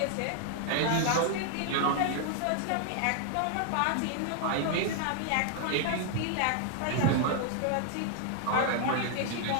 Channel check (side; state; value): both; different; correlation 0.00